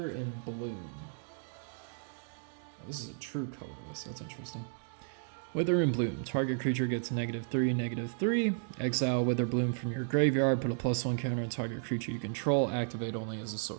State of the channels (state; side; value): silent; left; digital silence